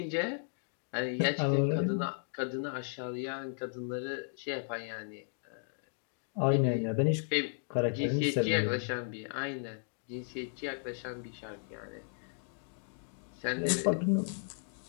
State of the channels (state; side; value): silent; right; digital silence